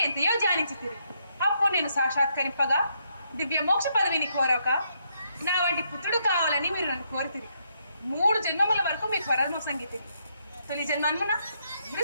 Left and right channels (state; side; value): inverted; both; correlation -0.76